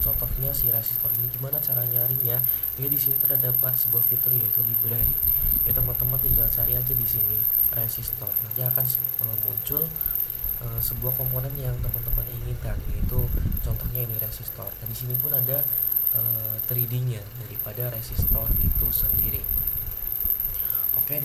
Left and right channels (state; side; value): identical; both; correlation 1.00